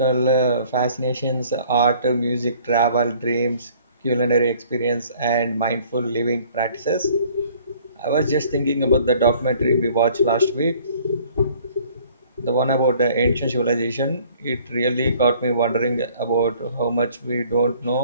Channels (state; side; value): inverted; both; correlation -0.55